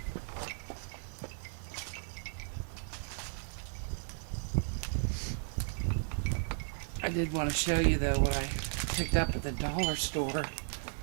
I did want to show you, though, what I picked up at the dollar store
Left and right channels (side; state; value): left; silent; digital silence